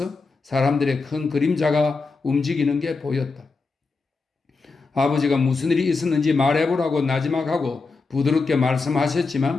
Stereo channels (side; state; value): right; quieter; 4.1 dB